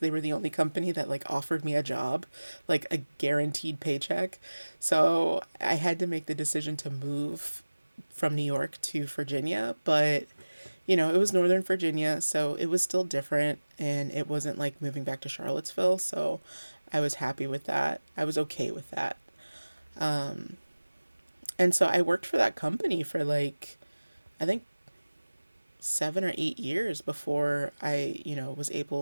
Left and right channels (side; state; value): both; inverted; correlation -1.00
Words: were the only company that like offered me a job, like a guaranteed paycheck. So I had to make the decision to move from New York to Virginia, but it was Northern Virginia, so it was still different and it wasn't like moving back to Charlottesville, so I was happy with that. I was okay with that. Um, and so I worked for that company for like I think 7 or 8 years before I, was